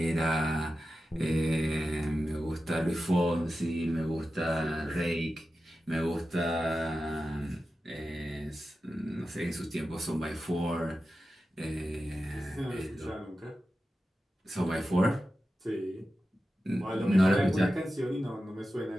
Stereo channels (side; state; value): both; normal; correlation 0.92